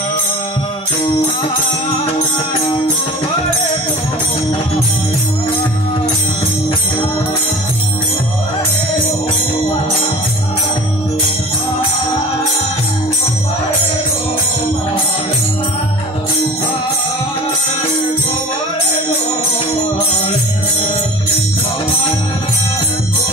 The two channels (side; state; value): both; normal; correlation 0.40